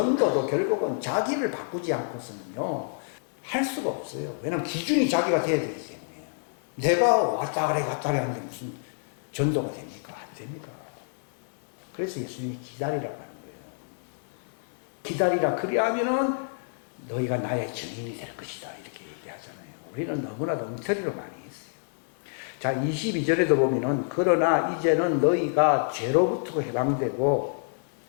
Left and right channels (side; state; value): right; silent; digital silence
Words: 결국은 자기를 바꾸지 않고서는요 할 수가 없어요. 왜냐하면 기준이 자기가 돼야 되기 때문에. 내가 왔다 그래 갔다 그래 하는데 무슨 전도가 됩니까? 안 됩니다. 그래서 예수님이 기다리라고 하는 거예요. 기다리라. 그리하면은 너희가 나의 증인이 될 것이다. 이렇게 얘기하잖아요. 우리는 너무나도 엉터리로 많이 했어요. 자, 22절에도 보면은 그러나 이제는 너희가 죄로부터 해방되고